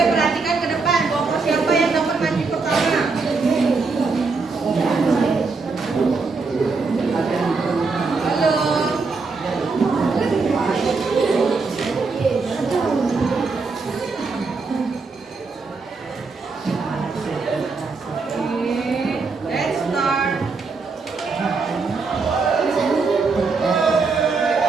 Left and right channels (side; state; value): left; quieter; 4.3 dB